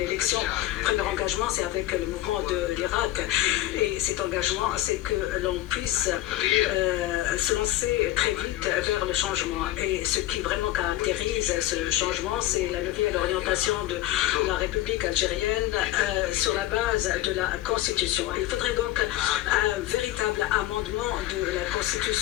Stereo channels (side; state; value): right; quieter; 15.1 dB